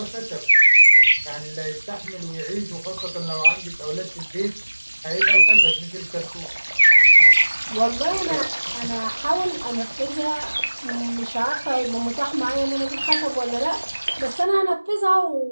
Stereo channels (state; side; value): inverted; both; correlation -1.00